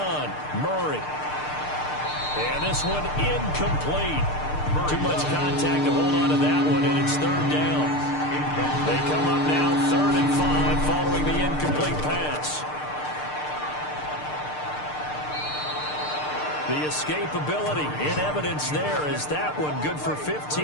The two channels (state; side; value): late; right; 6.7 ms